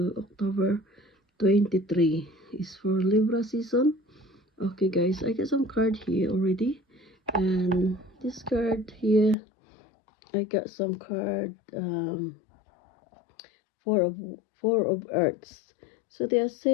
October 23. Is for Libra season. Okay, guys, I got some card here already, and this card here, I got some card. Four of Earths. So they are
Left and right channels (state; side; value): drops out; right; at 9.3 s